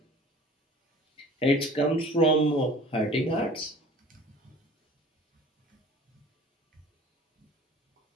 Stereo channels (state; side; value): normal; both; correlation 0.45